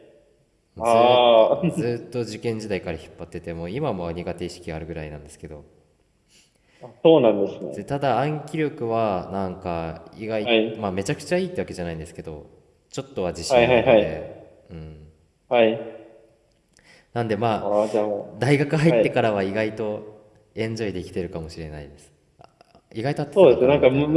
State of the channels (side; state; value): both; identical; correlation 1.00